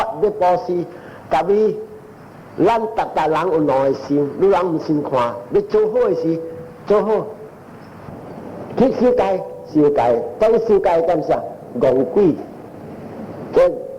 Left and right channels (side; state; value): both; identical; correlation 1.00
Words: 要保施，特别咱大人有两个心，你人唔先看，你做好的事做好，去修改，当修改干啥？戆鬼，今